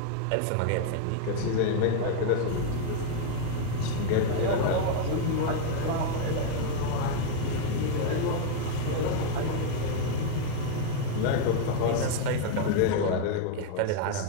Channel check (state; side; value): different; both; correlation 0.00